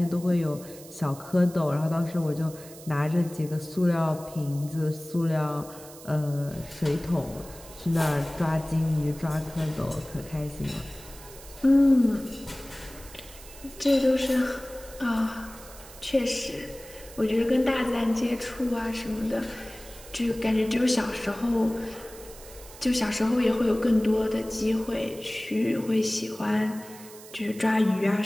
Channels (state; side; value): noise; right; hiss, 18 dB below the sound